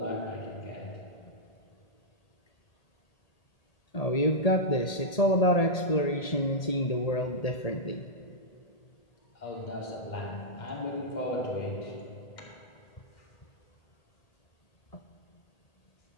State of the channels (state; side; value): late; right; 1.8 ms